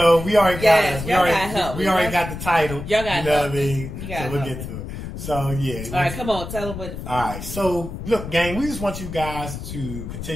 we already got it. We already got the title. Y'all got what I mean? So we'll get to it. So, yeah. All right, come on. Tell them what. All right. So, look, gang, we just want you guys to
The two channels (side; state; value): left; noise; rumble, 8 dB below the sound